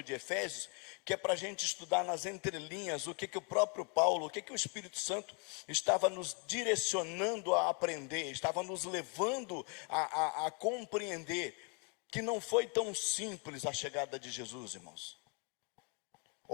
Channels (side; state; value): right; quieter; 35.5 dB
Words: de Efésios, que é para a gente estudar nas entrelinhas o que o próprio Paulo, o que o Espírito Santo estava nos direcionando a aprender, estava nos levando a compreender que não foi tão simples a chegada de Jesus, irmãos.